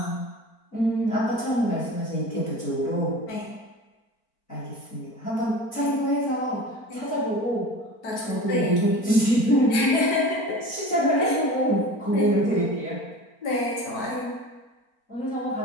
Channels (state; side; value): late; right; 4.4 ms